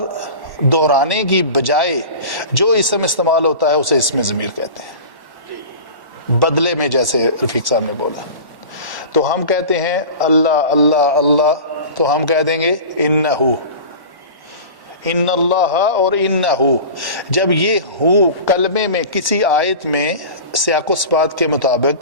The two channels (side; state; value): left; late; 1.1 ms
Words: دہرانے کی بجائے جو اسم استعمال ہوتا ہے اسے اسم ضمیر کہتے ہیں، بدلے میں، جیسے رفیق صاحب نے بولا۔ تو ہم کہتے ہیں اللہ اللہ اللہ، تو ہم کہہ دیں گے انہو، ان اللہ اور انہو۔ جب یہ ہو کلمے میں کسی آیت میں سیاق و سباق کے